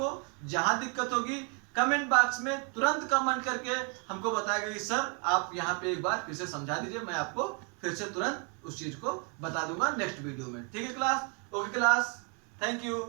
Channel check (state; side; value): quieter; left; 36.7 dB